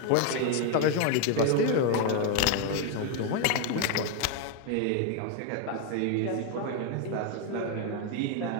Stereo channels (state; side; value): different; both; correlation 0.01